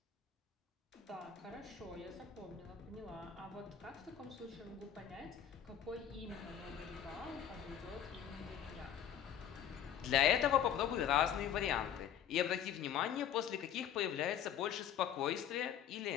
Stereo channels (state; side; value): quieter; right; 9.5 dB